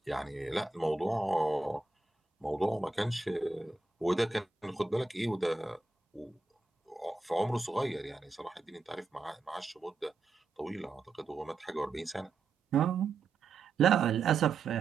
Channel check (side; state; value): left; quieter; 3.8 dB